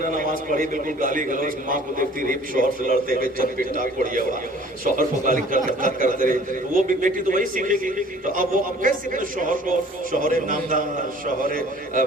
نماز پڑھی, بالکل گالی گلوچ, ماں کو دیکھتی رہی شوہر سے لڑتے ہوئے چند پٹ ٹاک پڑیا ہوا, شوہر کو گالی کرتے رہے, تو وہ بھی بیٹی تو وہی سیکھے گی. تو اب وہ اب کیسے اپنے شوہر کو شوہر نامدار, شوہر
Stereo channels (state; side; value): normal; both; correlation 0.51